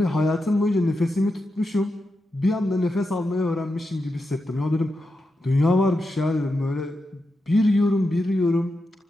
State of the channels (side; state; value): both; normal; correlation 0.88